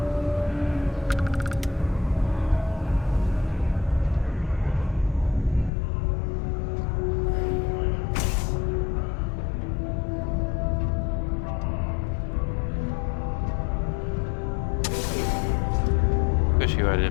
Wish you had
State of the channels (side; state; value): right; drops out; at 5.7 s